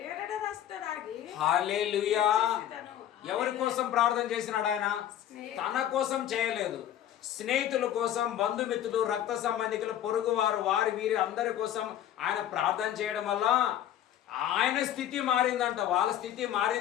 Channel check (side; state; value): right; quieter; 11.3 dB